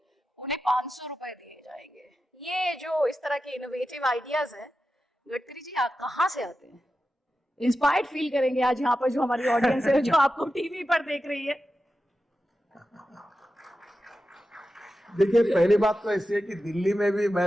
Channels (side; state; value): both; normal; correlation 0.92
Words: उन्हें 500 रुपए दिए जाएंगे। ये जो इस तरह के इनोवेटिव आइडियाज हैं, गडकरी जी आप कहाँ से आते हैं? इंस्पायर्ड फील करेंगे आज यहाँ पर जो हमारी ऑडियंस है, जो आपको टीवी पर देख रही है। देखिए, पहली बात तो ऐसी है कि दिल्ली में भी मैं